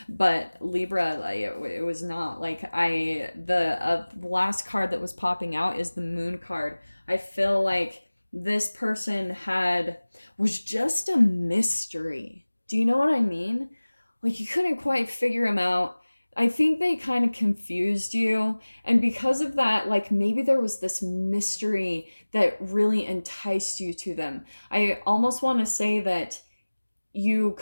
but Libra, like, it was not. Like the last card that was popping out is the Moon card. I feel like this person was just a mystery. Do you know what I mean? Like you couldn't quite figure him out. I think they kind of confused you. And because of that, like maybe there was this mystery that really enticed you to them. I almost want to say that you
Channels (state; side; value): inverted; both; correlation -1.00